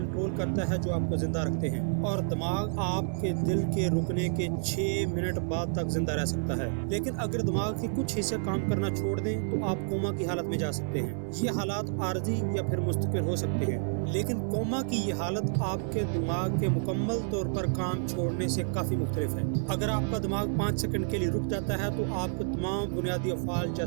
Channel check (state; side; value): silent; left; 58 dB below the other